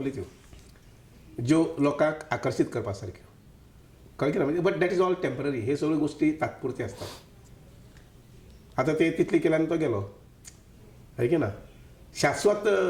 त्यो ज्यो लोकांक आकर्शीत करपा सारक्यो, कळ्ळें की ना. म्हणजे but that is all temporary. हे सगळ्यो गोश्टी तात्पुरत्यो असतात. आतां ते तितली केल्यान तो गेलो, है की ना. शाश्वत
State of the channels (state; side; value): identical; both; correlation 1.00